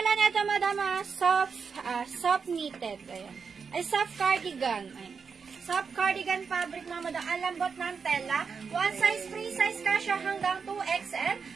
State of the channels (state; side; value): quieter; left; 5.7 dB